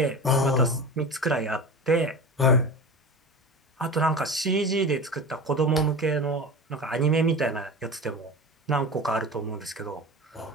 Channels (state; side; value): normal; both; correlation 0.29